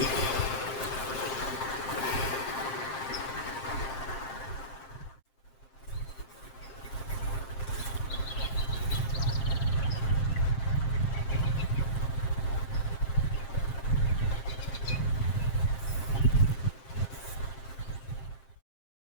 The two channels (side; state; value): right; late; 7.6 ms